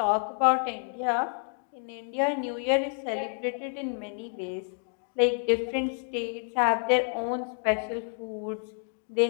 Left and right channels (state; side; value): silent; right; 55 dB below the other